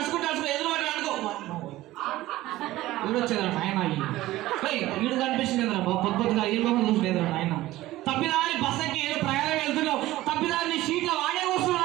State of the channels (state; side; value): quieter; left; 16.6 dB